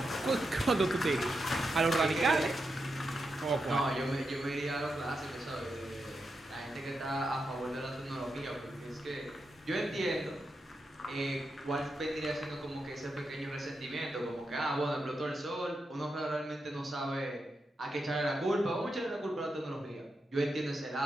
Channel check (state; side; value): normal; both; correlation 0.86